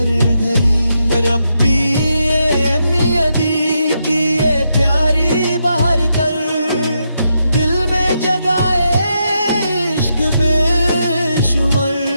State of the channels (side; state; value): both; inverted; correlation -0.82